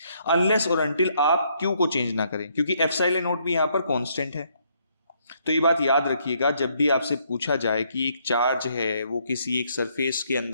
अनलेस और अनटिल आप Q को चेंज ना करें, क्योंकि एप्सिलॉन नॉट भी यहां पर कांस्टेंट है। तो ये बात याद रखिएगा जब भी आपसे पूछा जाए कि एक चार्ज है वो किसी एक सरफेस के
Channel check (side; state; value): both; inverted; correlation -0.70